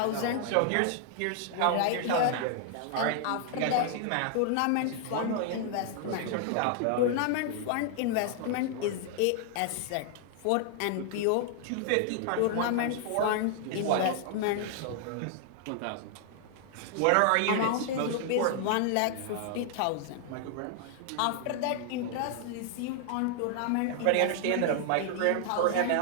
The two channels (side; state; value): both; different; correlation -0.01